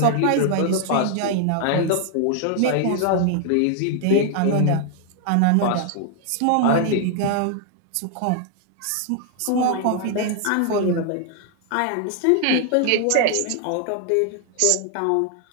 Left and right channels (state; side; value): different; both; correlation 0.00